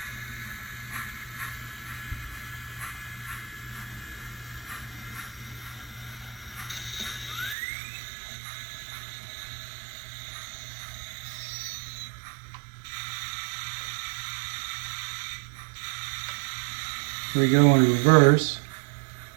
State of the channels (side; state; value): left; drops out; at 7.6 s